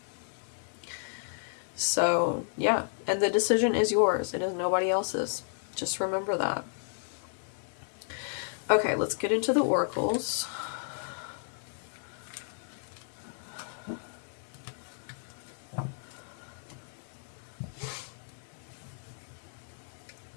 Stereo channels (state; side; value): silent; right; digital silence